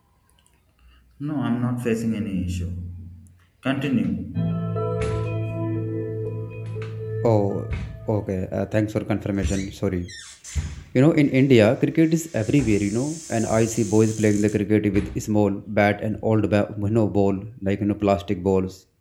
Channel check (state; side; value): identical; both; correlation 1.00